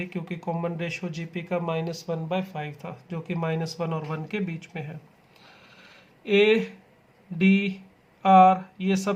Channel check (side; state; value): both; identical; correlation 1.00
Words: क्योंकि कॉमन रेशो जीपी का -1/5 था, जो कि -1 और 1 के बीच में है। ए डी आर ये